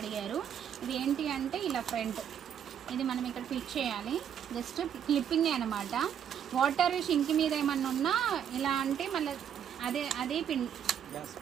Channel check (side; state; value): left; quieter; 8.8 dB